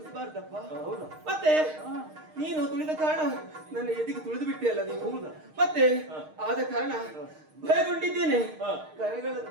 ಮತ್ತೆ ನೀನು ತುಳಿದ ಕಾರಣ ನನ್ನ ಎದೆಗೆ ತುಳಿದು ಬಿಟ್ಟೆ ಅಲ್ಲ ನೀನು. ಮತ್ತೆ ಆದ ಕಾರಣ ಭಯಗೊಂಡಿದ್ದೇನೆ.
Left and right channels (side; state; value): left; late; 6.5 ms